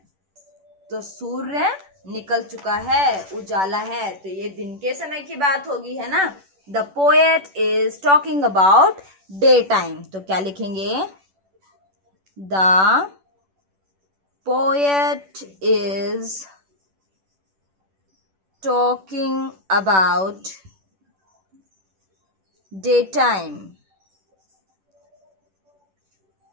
तो सूर्य निकल चुका है, उजाला है, तो ये दिन के समय की बात होगी, है ना। The poet is talking about day time, तो क्या लिखेंगे, the poet is talking about daytime,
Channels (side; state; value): left; late; 10 ms